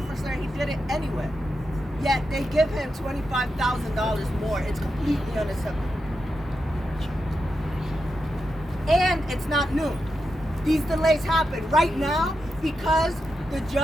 and he did it anyway. Yet they give him $25,000 more. It's completely unacceptable. And it's not new. These delays happen right now because the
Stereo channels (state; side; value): normal; both; correlation 0.87